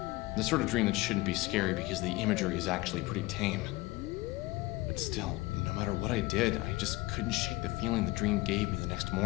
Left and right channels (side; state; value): right; quieter; 20.5 dB